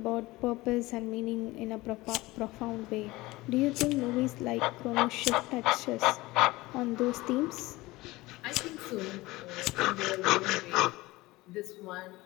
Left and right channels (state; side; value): quieter; right; 20.1 dB